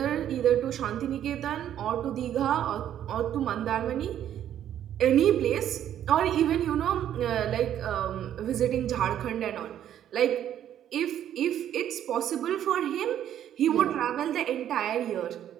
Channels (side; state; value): left; quieter; 10.7 dB